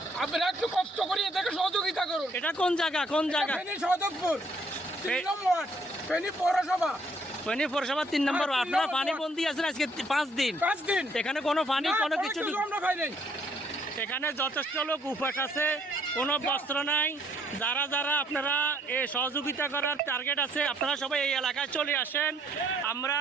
আপনারা একটু কষ্ট করে এদেরকে সহযোগিতা করুন। এটা কোন জায়গা? কোন জায়গা? ফেনী সদরপুর 3 নম্বর ফেনী পৌরসভা। ফেনী পৌরসভা 3 নম্বর। আপনারা পানি বন্দি আছেন আজকে 5 দিন। এখানে কোনো পানি কোনো কিছু আমরা পাই নাই। এখানে যথেষ্ট লোক উপাস আছে, কোনো বস্ত্র নাই। যারা যারা আপনারা এই সহযোগিতা করার টার্গেট আছে, আপনারা সবাই এই এলাকায় চলে আসেন। আমরা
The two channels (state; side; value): normal; both; correlation 0.66